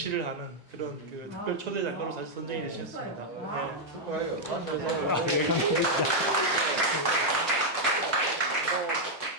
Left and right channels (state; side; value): normal; both; correlation -0.02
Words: 하는 그런 그 특별 초대 작가로 사실 선정이 되셨습니다. 축하해요.